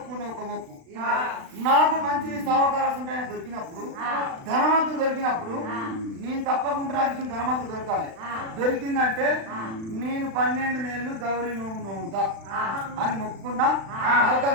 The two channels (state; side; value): late; left; 36 ms